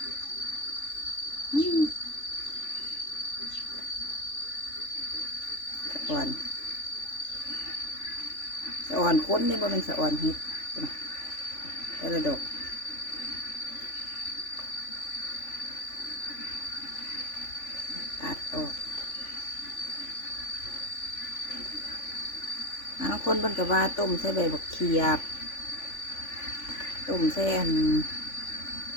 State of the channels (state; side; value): late; right; 3.5 ms